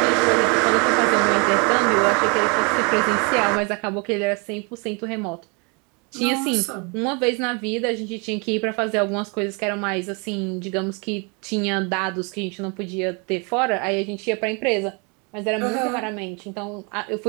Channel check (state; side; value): quieter; left; 32.7 dB